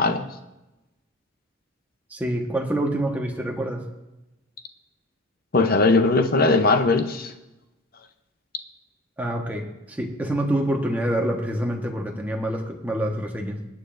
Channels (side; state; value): both; normal; correlation 0.40